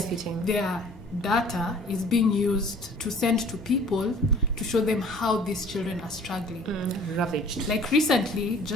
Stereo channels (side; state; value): both; normal; correlation 0.51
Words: Their data is being used to send to people to show them how these children are struggling. Ravaged. Like recently,